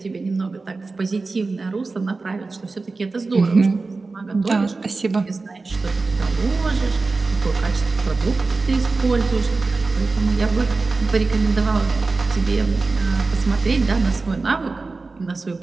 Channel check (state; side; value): quieter; left; 3.8 dB